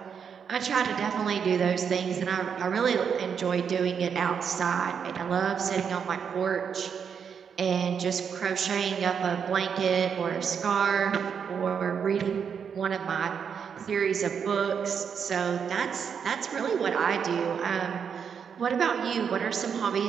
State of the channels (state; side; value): quieter; left; 7.0 dB